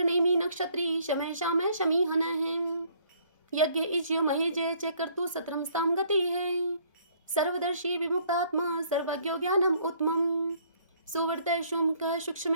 नेमी नक्षत्री शमय शामय शमीहन है। यज्ञ इज्यो महेजय च कर्तु सत्रम स्तम गति है। सर्वदर्शी विमुक्तात्मा सर्वज्ञो ज्ञानम उत्तमम। सुवर्त शुंक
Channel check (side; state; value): both; inverted; correlation -0.62